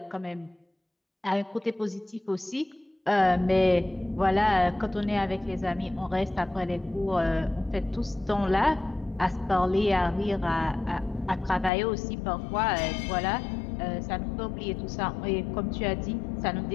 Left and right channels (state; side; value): drops out; right; at 11.7 s